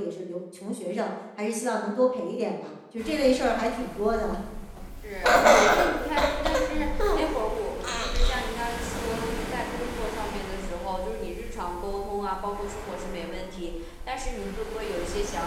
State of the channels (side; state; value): both; identical; correlation 1.00